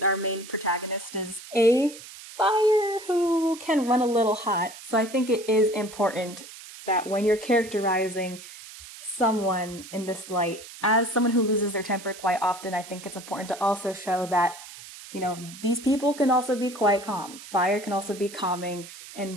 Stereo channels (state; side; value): noise; right; hiss, 16 dB below the sound